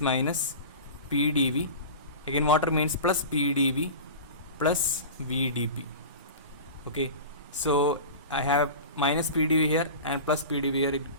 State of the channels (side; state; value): both; inverted; correlation -0.32